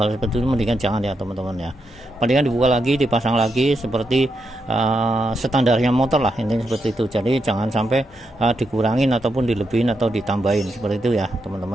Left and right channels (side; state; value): both; normal; correlation 0.83